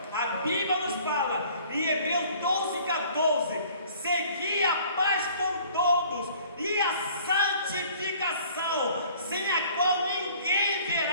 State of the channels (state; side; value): inverted; both; correlation -0.53